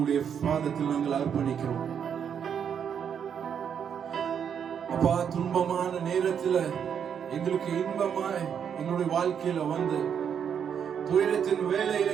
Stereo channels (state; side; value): quieter; left; 7.9 dB